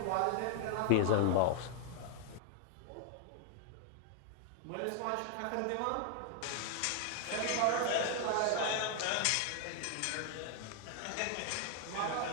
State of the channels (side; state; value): both; different; correlation 0.00